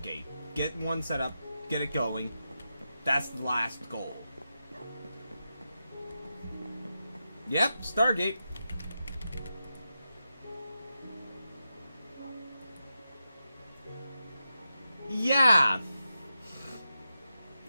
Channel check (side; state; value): both; inverted; correlation -0.89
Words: Get one set up, get it going. That's the last goal. Yep, Stargate. Yeah.